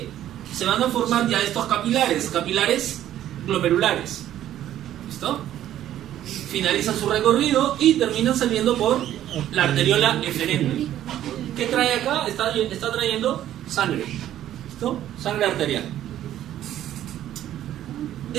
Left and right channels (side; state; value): left; quieter; 12.1 dB